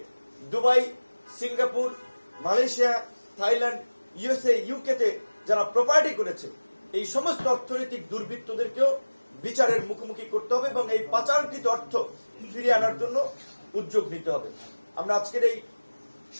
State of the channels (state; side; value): inverted; both; correlation -1.00